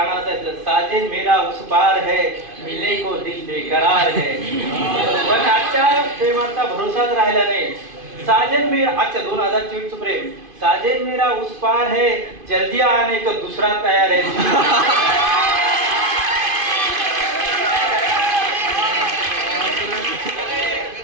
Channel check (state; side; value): late; left; 2.5 ms